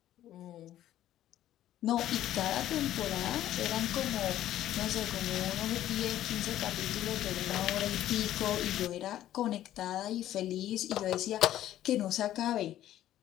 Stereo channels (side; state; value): right; quieter; 12.8 dB